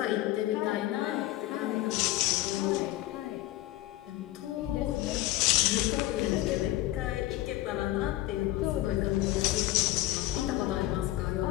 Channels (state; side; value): quieter; right; 16.4 dB